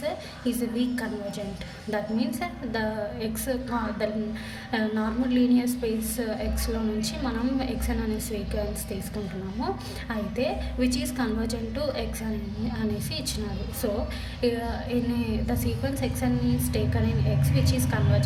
is a weak convergent. That means the x the normal linear space x లో నుంచి మనం x అనే సీక్వెన్స్ తీసుకుంటున్నాము. అయితే which is convergent to x అనేసి ఇచ్చినారు. So the sequence xn is taken in x which is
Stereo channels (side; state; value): both; identical; correlation 1.00